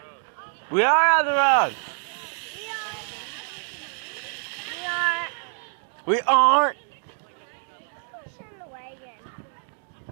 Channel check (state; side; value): silent; left; 58 dB below the other